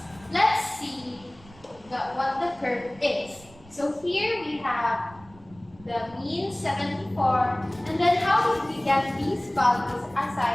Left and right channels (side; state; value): right; noise; rumble, 24 dB below the sound